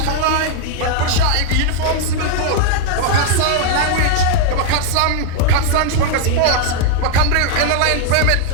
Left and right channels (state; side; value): different; both; correlation 0.00